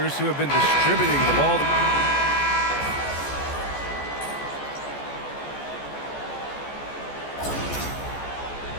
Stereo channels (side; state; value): right; late; 14 ms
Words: who have been distributing the ball.